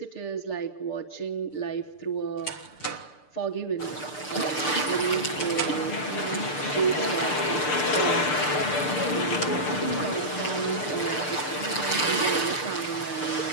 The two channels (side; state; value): right; late; 6.7 ms